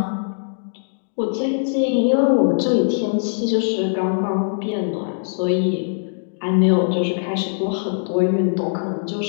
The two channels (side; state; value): right; silent; digital silence